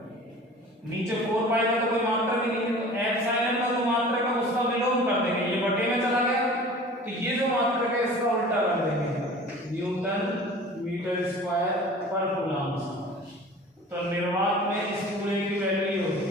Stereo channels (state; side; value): normal; both; correlation 0.42